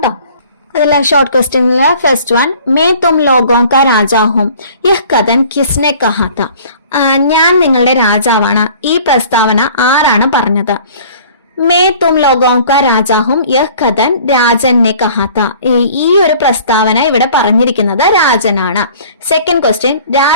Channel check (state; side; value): inverted; both; correlation -0.50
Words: അതിലെ ഷോർട്ട് ക്വസ്റ്റ്യനിലെ ഫസ്റ്റ് വൺ, മേ തും ലോഗോं का राजा हूं, यह कथन किसने कहा था? ഞാൻ നിങ്ങളുടെ രാജാവാണ്. ഈ പ്രസ്താവന ആരാണ് പറഞ്ഞത്? മേ തും ലോഗോं का राजा हूं, यह कथन രാജൻ ने कहा था. ഈ ഒരു പ്രസ്താവന ഇവിടെ പറഞ്ഞിരിക്കുന്നത് രാജനാണ്. സെക്കൻഡ് ക്വസ്റ്റ്യൻ,